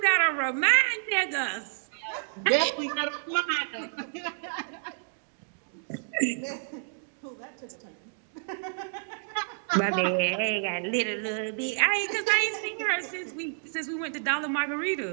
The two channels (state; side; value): silent; left; digital silence